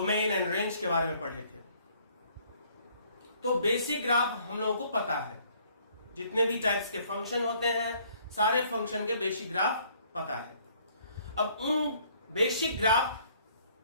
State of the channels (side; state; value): both; inverted; correlation -0.62